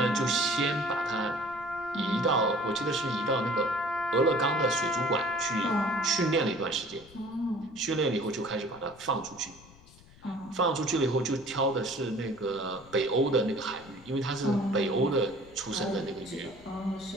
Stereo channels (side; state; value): left; noise; rumble, 23 dB below the sound